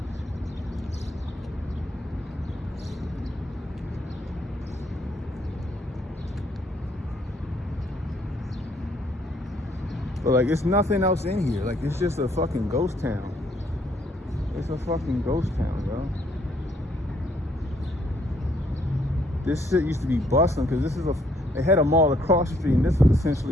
But like, it's nothing else in here. Like, it's just a fucking ghost town. It's a fucking ghost town, bro. This shit used to be bustling because this is they had a mall across the street, and this is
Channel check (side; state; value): both; normal; correlation 0.68